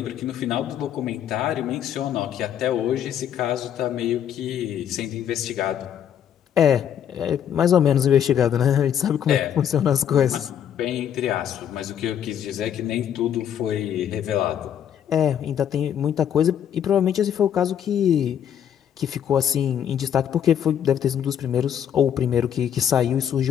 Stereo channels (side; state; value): right; quieter; 9.3 dB